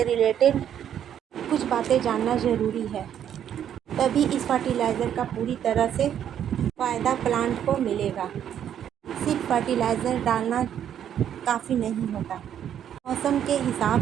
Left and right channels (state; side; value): quieter; left; 9.7 dB